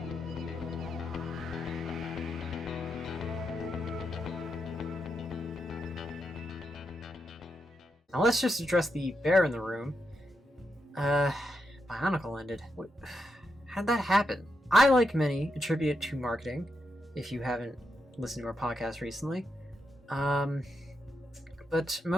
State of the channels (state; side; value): normal; both; correlation 0.84